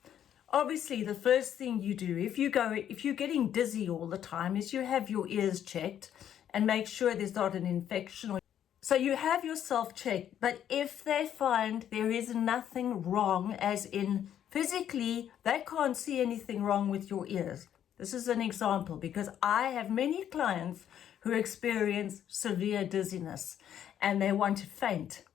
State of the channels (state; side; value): quieter; right; 10.1 dB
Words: Obviously, the first thing you do if you're getting dizzy all the time is you have your ears checked and make sure there's not an infection. So you have yourself checked, but if they find there is nothing wrong, as in physically, they can't see anything wrong with your ears. This is an example, because I have many clients who experience severe dizziness and they want to faint